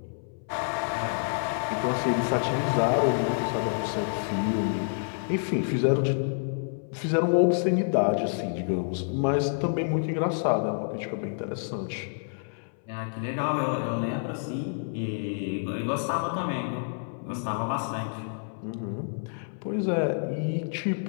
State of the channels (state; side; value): silent; right; 59 dB below the other